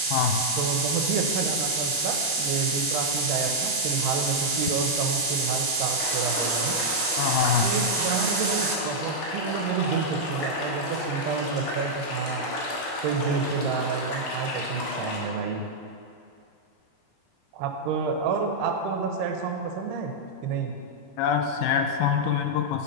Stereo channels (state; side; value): normal; both; correlation -0.05